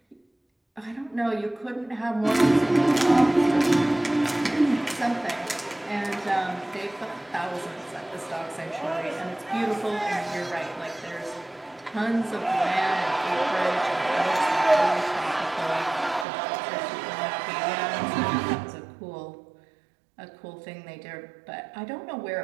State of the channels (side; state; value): left; drops out; at 16.2 s